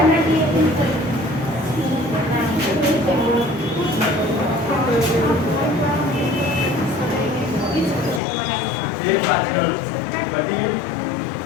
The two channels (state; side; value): drops out; right; at 8.2 s